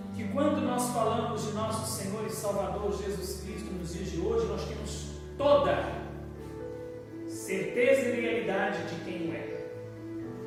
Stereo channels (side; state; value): both; identical; correlation 1.00